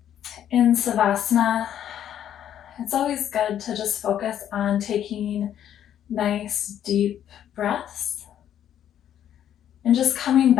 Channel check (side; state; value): right; quieter; 10.3 dB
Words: In Savasana, it's always good to just focus on taking nice deep breaths and just coming